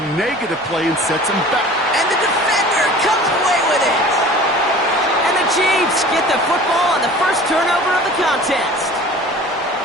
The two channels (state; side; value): normal; both; correlation 0.43